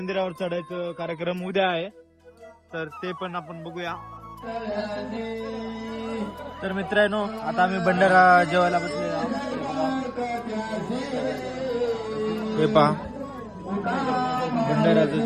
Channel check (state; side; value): identical; both; correlation 1.00